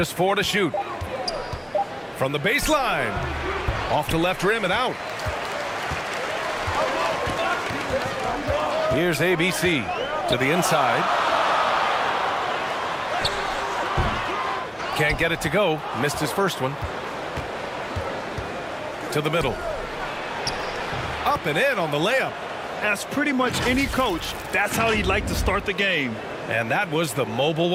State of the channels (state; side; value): identical; both; correlation 1.00